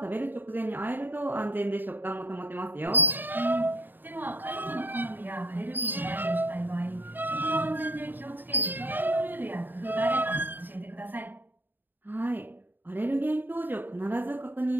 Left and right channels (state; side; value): late; left; 0.092 ms